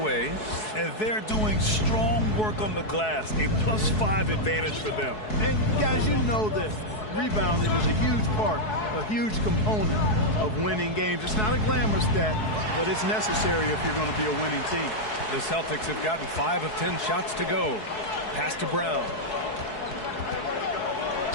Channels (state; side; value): late; right; 4.7 ms